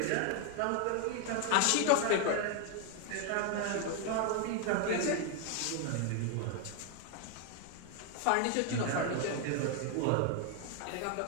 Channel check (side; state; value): both; different; correlation 0.01